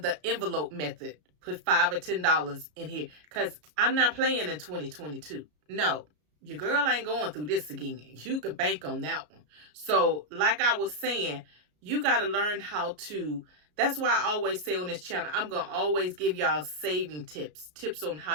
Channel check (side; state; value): left; late; 33 ms